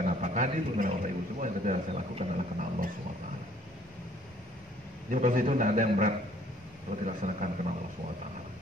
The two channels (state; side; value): normal; both; correlation 0.59